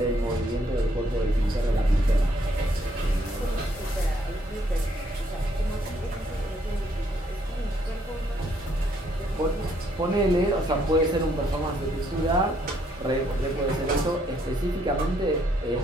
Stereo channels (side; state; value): both; normal; correlation 0.70